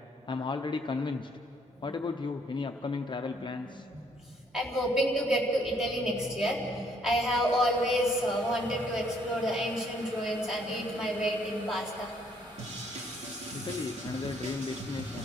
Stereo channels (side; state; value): both; normal; correlation 0.66